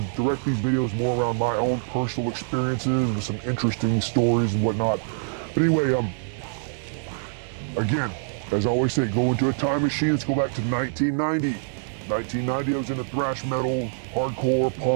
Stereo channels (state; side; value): silent; left; digital silence